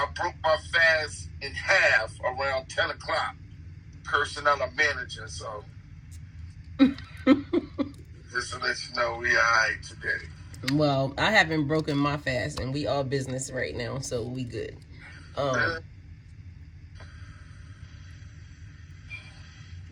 broke my fast in half around 10 o'clock. Cursing out a manager, so just to let you know we all right today. Well, I haven't broken my fast, and we all business right now, so we good. What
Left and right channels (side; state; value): both; identical; correlation 1.00